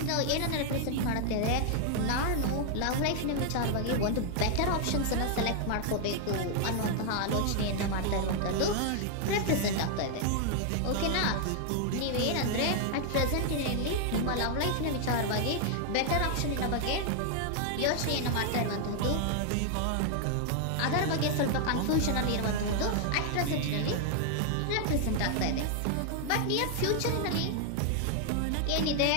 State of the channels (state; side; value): different; both; correlation 0.00